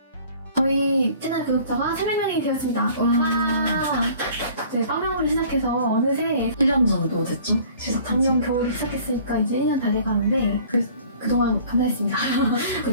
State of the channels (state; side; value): inverted; both; correlation -0.51